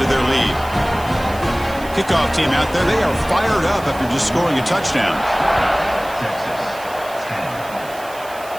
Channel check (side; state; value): right; noise; hiss, 18 dB below the sound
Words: their lead. Kickoff team out there, they are fired up after just scoring a touchdown.